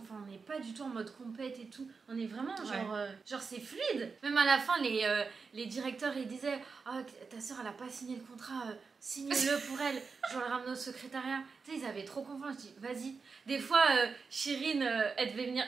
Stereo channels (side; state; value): left; quieter; 4.9 dB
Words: on n'est pas du tout en mode compète et tout. On est vraiment genre, genre c'est fluide. Même à la fin les directeurs ils disaient, ah ta soeur elle a pas signé le contrat, signe-le pour elle. Je vais le ramener au secrétariat. Tu sais ils avaient trop confiance. Je dis vas-y. Des fois Chirine elle devait venir.